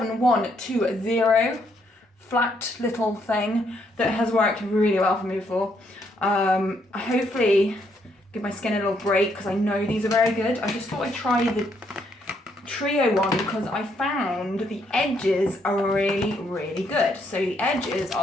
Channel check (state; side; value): normal; both; correlation 0.73